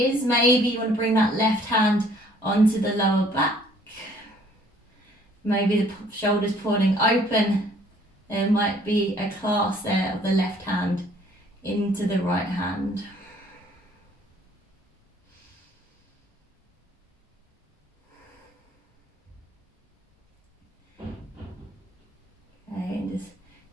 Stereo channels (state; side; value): normal; both; correlation 0.59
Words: Maybe you want to bring that left hand onto the lower back. Maybe the shoulders pulling open. There might be a clasp there of the left hand into the right hand. Okay, and just